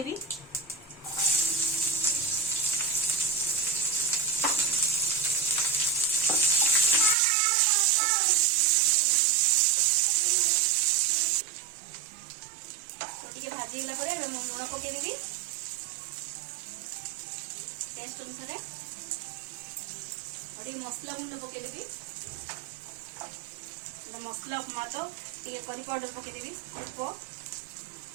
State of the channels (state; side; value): drops out; left; at 7.2 s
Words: भाजी गला लुण पकईदेवी टेस्ट अनुसार और मसला गुंड पकईदेवी मसला उपमा तो टे करी पाउडर पकईदेवी अल्प